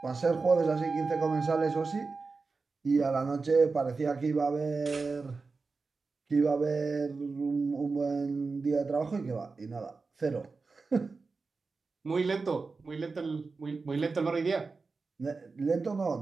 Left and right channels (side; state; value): left; quieter; 4.2 dB